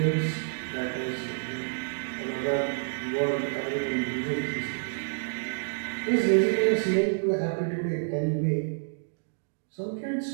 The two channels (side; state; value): left; silent; digital silence